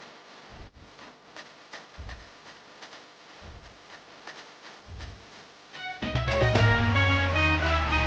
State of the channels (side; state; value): both; identical; correlation 1.00